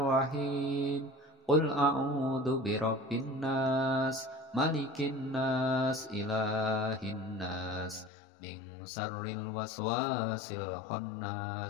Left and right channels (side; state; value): right; drops out; at 8.1 s